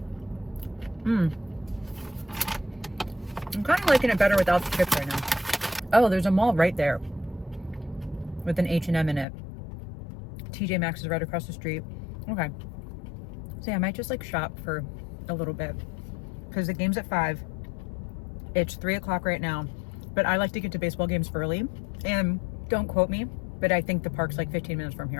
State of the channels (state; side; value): drops out; right; at 9.2 s